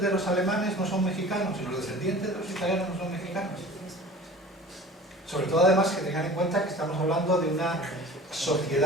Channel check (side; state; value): both; normal; correlation 0.42